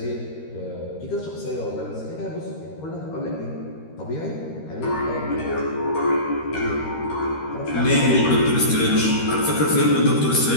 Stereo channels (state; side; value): late; right; 13 ms